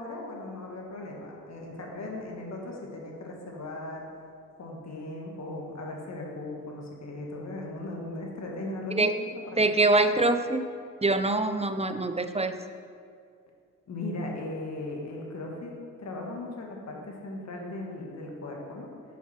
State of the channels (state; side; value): normal; both; correlation 0.27